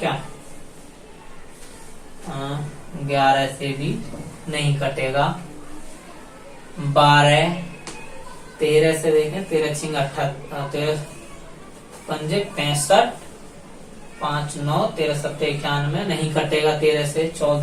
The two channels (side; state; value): both; identical; correlation 1.00